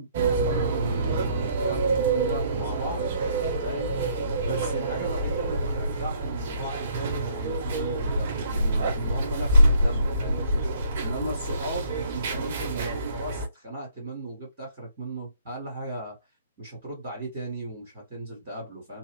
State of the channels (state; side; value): inverted; both; correlation -0.64